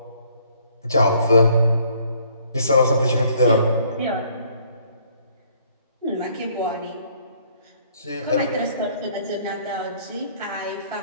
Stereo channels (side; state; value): both; inverted; correlation -0.63